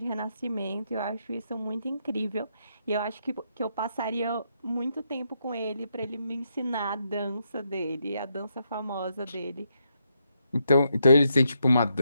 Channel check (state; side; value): inverted; both; correlation -0.80